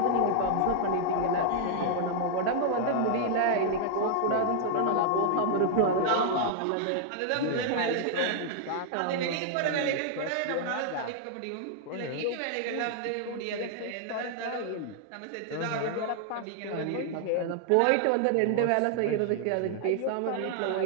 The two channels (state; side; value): different; both; correlation -0.01